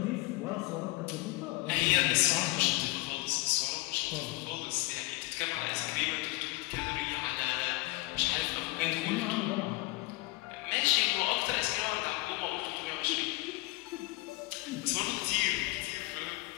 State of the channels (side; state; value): right; quieter; 22.1 dB